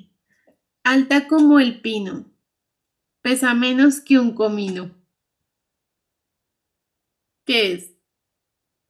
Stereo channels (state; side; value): identical; both; correlation 1.00